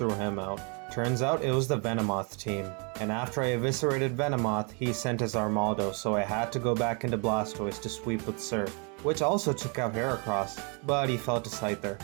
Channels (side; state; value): left; quieter; 35.2 dB